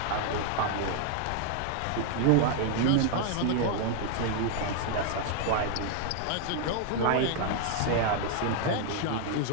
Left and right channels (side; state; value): both; different; correlation 0.00